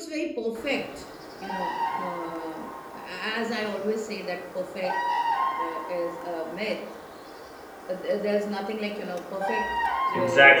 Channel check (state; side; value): identical; both; correlation 1.00